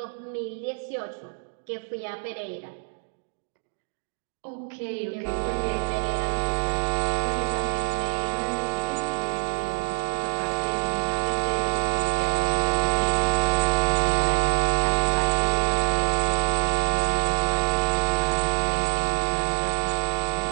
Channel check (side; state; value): left; silent; digital silence